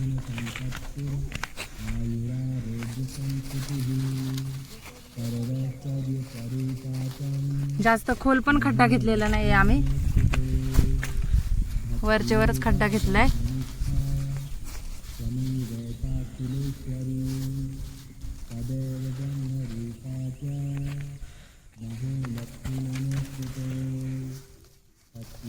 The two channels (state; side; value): identical; both; correlation 1.00